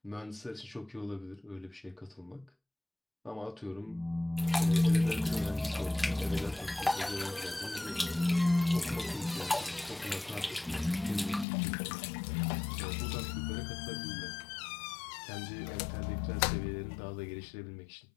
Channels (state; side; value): drops out; right; at 11.5 s